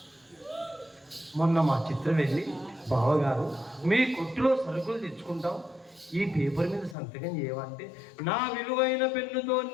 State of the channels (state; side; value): drops out; right; at 7.0 s